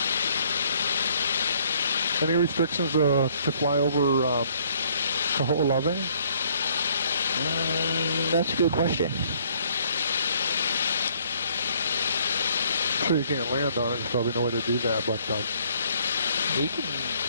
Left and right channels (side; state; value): both; inverted; correlation -0.63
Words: Any restrictions to fly over Kaho'olawe? That's a good question. I'm sure you can't land on it. There's probably no way to do that, but you can.